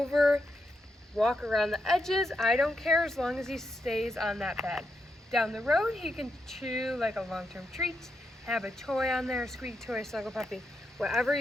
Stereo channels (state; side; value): normal; both; correlation 0.83